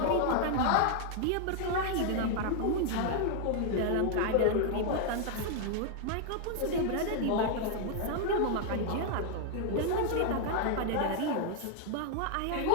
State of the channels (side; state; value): both; different; correlation 0.00